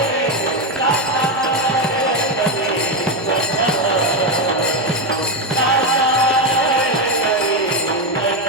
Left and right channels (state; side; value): normal; both; correlation 0.08